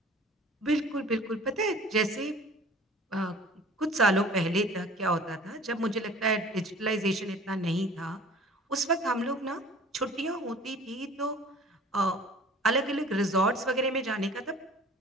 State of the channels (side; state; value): both; normal; correlation 0.46